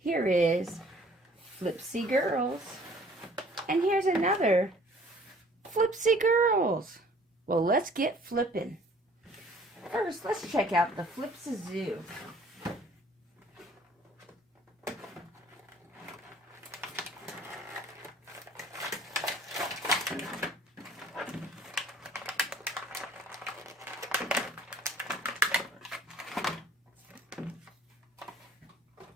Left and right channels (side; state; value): both; normal; correlation 0.54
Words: is Flipsy Girls. And here's another Flipsy Girls. Well, let's get flipping. First, let's check out the Flipz.